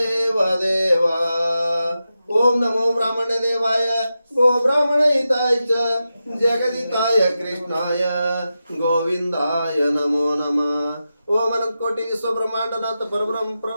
ओम नमो ब्राह्मण देवाय गो ब्राह्मणहिताय च जगदिताय कृष्णाय गोविंदाय नमो नमः। ओम अनंत कोटि विश्व ब्रह्मांडनाथ परब्रह्म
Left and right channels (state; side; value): inverted; both; correlation -0.91